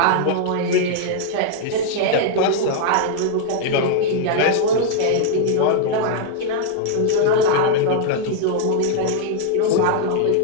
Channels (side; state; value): both; different; correlation 0.00